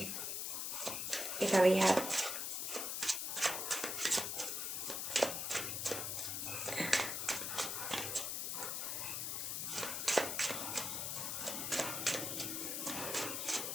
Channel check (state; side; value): noise; left; hiss, 1 dB below the sound